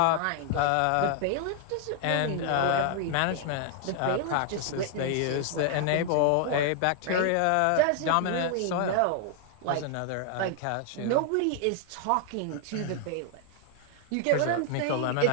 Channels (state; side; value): different; both; correlation 0.00